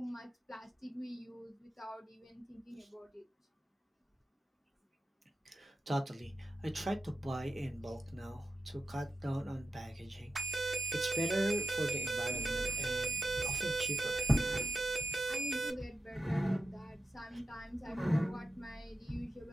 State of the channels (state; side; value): normal; both; correlation 0.90